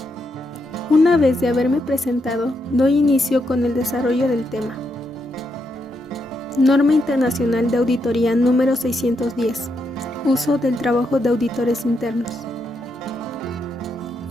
Una vez de haberme presentado, doy inicio con el desarrollo del tema. Norma Internacional de Auditoría número 610. Uso del trabajo de auditores internos.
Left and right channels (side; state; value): both; normal; correlation 0.81